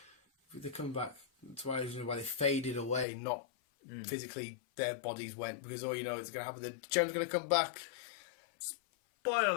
They're coming back. That's why they faded away, not physically their bodies went, because all you know it's going to happen. The gem's going to come back. Spoiler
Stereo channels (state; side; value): drops out; right; at 3.1 s